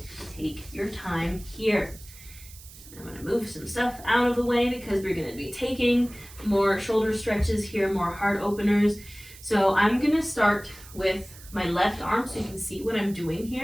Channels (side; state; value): right; noise; hiss, 19 dB below the sound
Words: Take your time here. I'm going to move some stuff out of the way because we're going to be taking more shoulder stretches here, more heart openers. So I'm going to start with my left arm so you can see what I'm doing